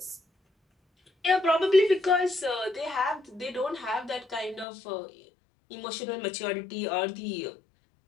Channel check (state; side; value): drops out; right; at 4.7 s